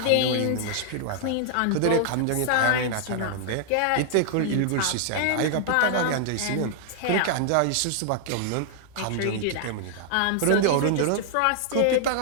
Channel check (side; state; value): both; different; correlation 0.00